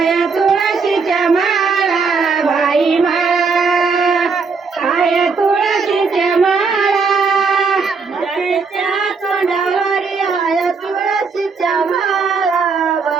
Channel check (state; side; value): quieter; left; 5.0 dB